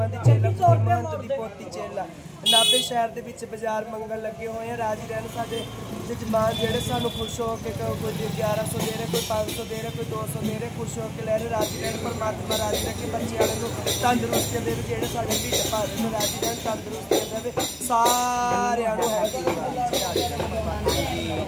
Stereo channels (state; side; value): identical; both; correlation 1.00